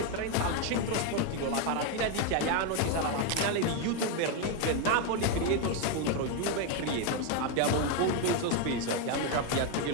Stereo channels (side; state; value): both; different; correlation 0.02